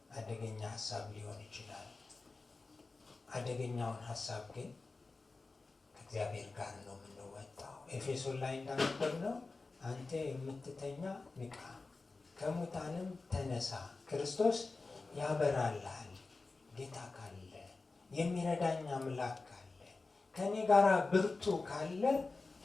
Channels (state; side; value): quieter; right; 3.7 dB